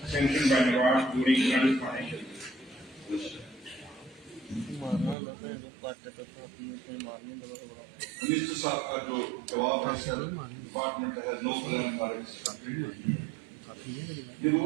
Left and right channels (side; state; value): left; drops out; at 5.2 s